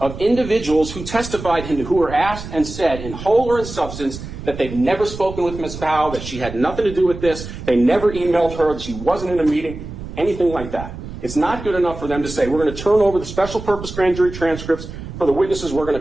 individuals who testified and who were asked and said in whole or in substance that they've never spoken with Ms. Powell, that she had nothing to do with this, they never emailed her, that she wasn't in a meeting, anything like that. It's not good enough for them to say, we're going to turn over the special purpose grand jury transcripts for the witnesses we're going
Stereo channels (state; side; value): noise; right; rumble, 11 dB below the sound